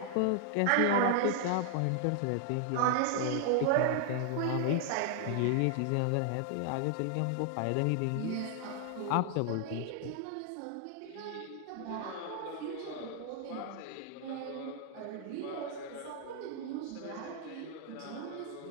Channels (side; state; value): both; different; correlation 0.00